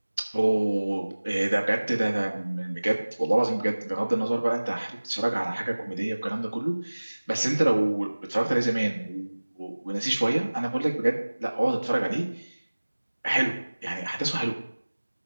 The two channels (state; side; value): inverted; both; correlation -1.00